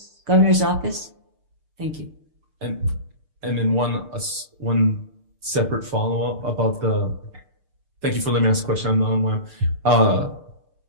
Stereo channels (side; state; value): left; late; 6.7 ms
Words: Governor's office? Thank you. And then one separate follow-up about thank you for letting me ask a question. I'm not on